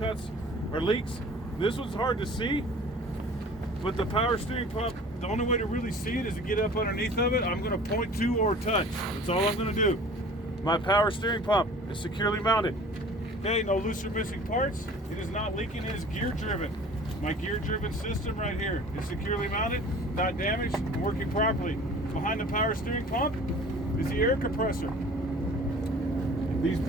or leaks. This one's hard to see, but the power steering pump, the only way to really see it is to get up underneath of it. I'm going to point to or touch. That's all I'm going to do. My power steering pump is securely mounted. Okay, no loose or missing parts. It is not leaking. It is gear driven. My gear driven system right here is securely mounted, not damaged, and working properly. Behind the power steering pump is the air compressor. These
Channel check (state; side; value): normal; both; correlation 0.46